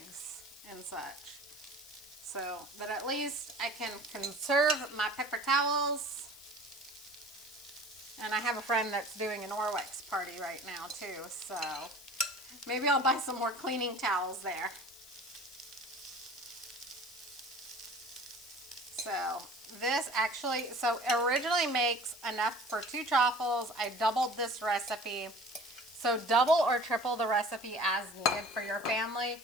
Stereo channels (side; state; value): left; noise; hiss, 19 dB below the sound